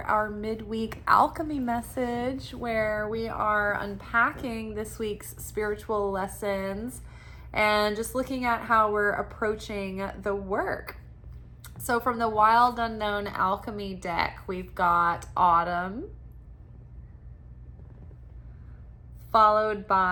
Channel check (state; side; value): identical; both; correlation 1.00